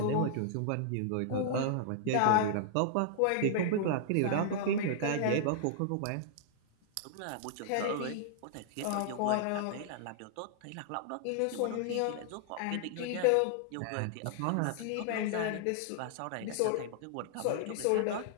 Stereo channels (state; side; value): different; both; correlation -0.01